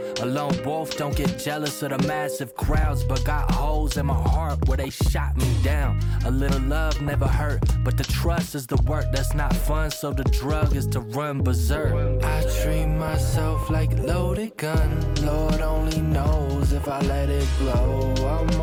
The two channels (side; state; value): both; identical; correlation 1.00